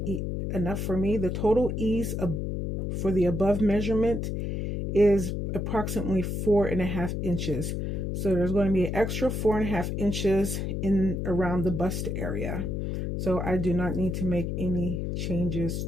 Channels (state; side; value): noise; left; hum, 2 dB below the sound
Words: for me. The total ease for the above measurement is approximately 4.5 inches. So there's going to be an extra 4.5 inches in around the bust area. So I do not need to make any changes